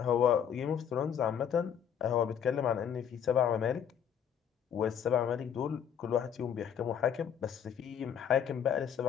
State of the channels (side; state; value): right; quieter; 8.5 dB